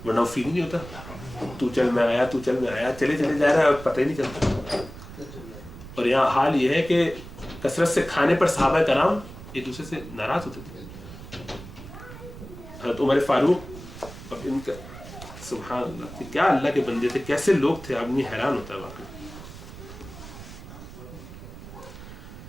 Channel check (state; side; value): noise; right; rumble, 14 dB below the sound